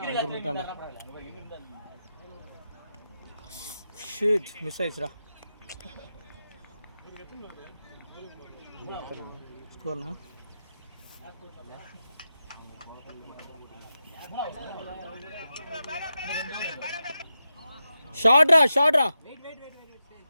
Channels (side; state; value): both; inverted; correlation -0.90